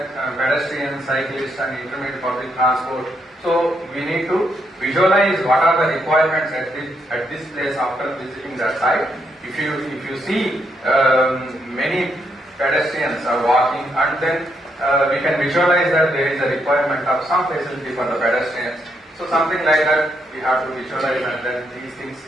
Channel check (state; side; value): normal; both; correlation 0.77